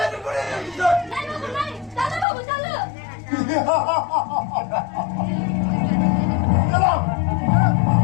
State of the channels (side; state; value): right; drops out; at 2.2 s